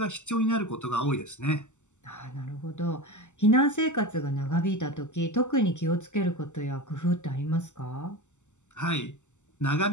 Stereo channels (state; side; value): late; right; 0.84 ms